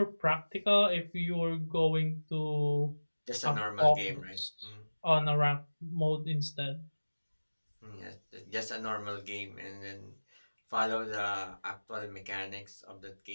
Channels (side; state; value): both; inverted; correlation -1.00